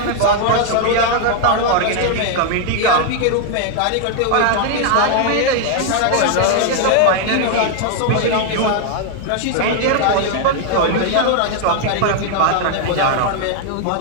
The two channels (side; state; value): both; different; correlation 0.00